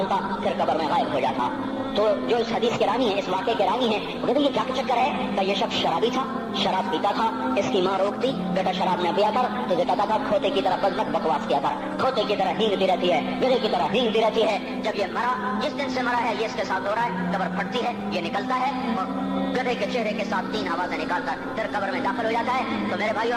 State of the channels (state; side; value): identical; both; correlation 1.00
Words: پھر قبر میں غائب ہو جاتا. تو جو اس حدیث کے راوی ہیں, اس واقعے کے راوی ہیں, وہ کہتے ہیں یہ کیا چکر ہے؟ کہ یہ شخص شرابی تھا, شراب پیتا تھا. اس کی ماں روکتی, بیٹا شراب نہ پیا کر, تو یہ کہتا تھا کھوتے کی طرح بزنک بکواس کیا کر, کھوتے کی طرح ہینگتی رہتی ہے, گدھے کی طرح ہینگتی رہتی ہے. جب یہ مرا, جس دن سے مرا ہے یہ اس کے ساتھ ہو رہا ہے, قبر پھٹتی ہے, یہ نکلتا ہے اور گدھے کے چہرے کے ساتھ 3 آوازیں نکالتا پھر قبر میں داخل ہو جاتا ہے. تو میرے بھائیو,